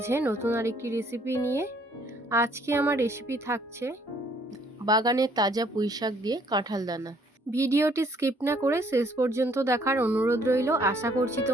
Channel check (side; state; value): both; normal; correlation 0.63